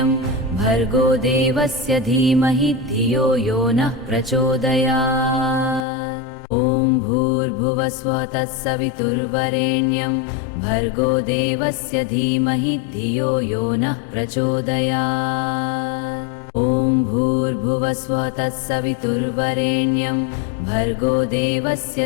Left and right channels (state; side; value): drops out; right; at 5.9 s